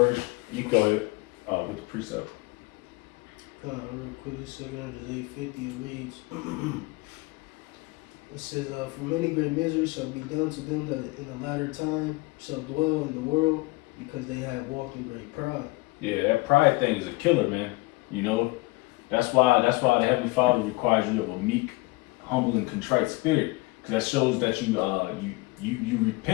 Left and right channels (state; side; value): quieter; right; 23.2 dB